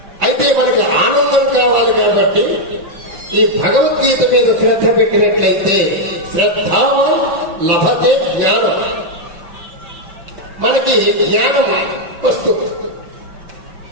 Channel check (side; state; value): left; late; 5.9 ms